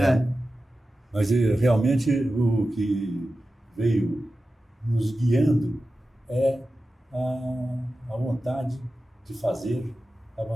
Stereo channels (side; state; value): both; normal; correlation 0.93